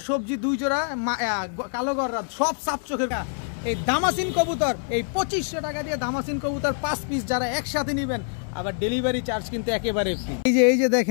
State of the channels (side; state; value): right; silent; 60 dB below the other